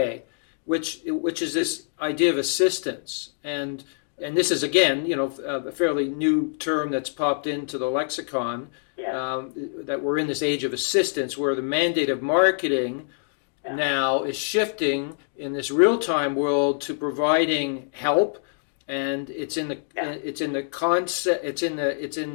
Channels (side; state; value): right; silent; digital silence